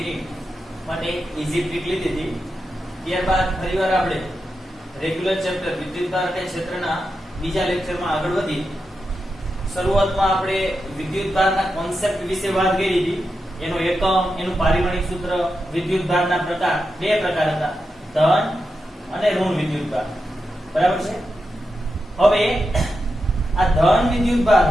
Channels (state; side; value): normal; both; correlation 0.88